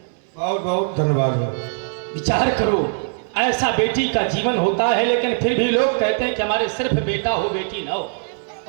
बहुत बहुत धन्यवाद है। विचार करो ऐसा बेटी का जीवन होता है, लेकिन फिर भी लोग कहते हैं कि हमारे सिर्फ बेटा हो बेटी ना हो।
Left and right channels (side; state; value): left; silent; digital silence